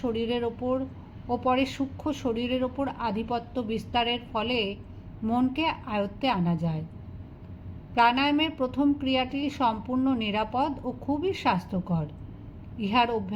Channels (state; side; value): identical; both; correlation 1.00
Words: শরীরের ওপর ও পরে সূক্ষ্ম শরীরের ওপর আধিপত্য বিস্তারের ফলে মনকে আয়ত্তে আনা যায়। প্রাণায়ামের প্রথম ক্রিয়াটি সম্পূর্ণ নিরাপদ ও খুবই স্বাস্থ্যকর। ইহার